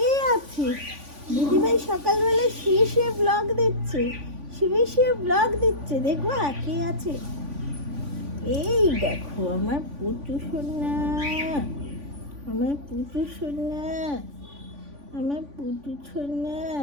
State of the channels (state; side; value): late; left; 3.5 ms